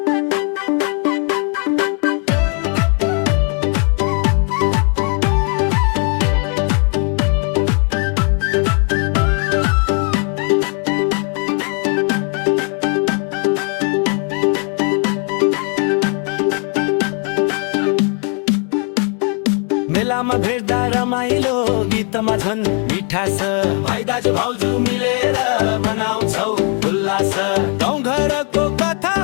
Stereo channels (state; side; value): quieter; right; 39.6 dB